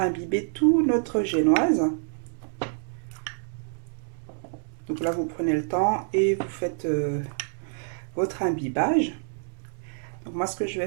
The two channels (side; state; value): left; silent; digital silence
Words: tout notre génoise. Donc là, vous prenez le temps et vous faites votre imbibage. Donc moi, ce que je